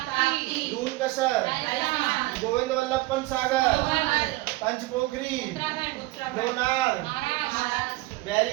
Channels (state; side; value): quieter; left; 20.1 dB